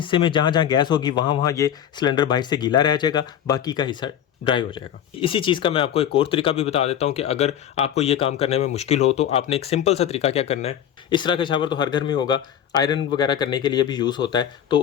में जहाँ जहाँ गैस होगी वहाँ ये सिलेंडर बाहर से गीला रह जाएगा, बाकी का हिस्सा ड्राई हो जाएगा। इसी चीज़ का मैं आपको एक और तरीका भी बता देता हूँ कि अगर आपको ये काम करने में मुश्किल हो तो आपने एक सिंपल सा तरीका क्या करना है। इस तरह का शावर तो हर घर में होगा, आयरन वगैरह करने के लिए भी यूज़ होता है।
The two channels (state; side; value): quieter; right; 9.9 dB